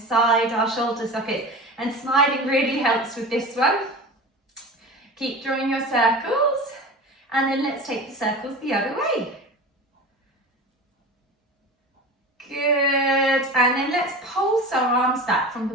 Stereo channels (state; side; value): normal; both; correlation 0.32